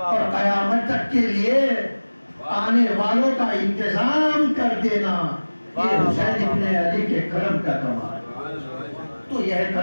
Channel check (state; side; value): inverted; both; correlation -1.00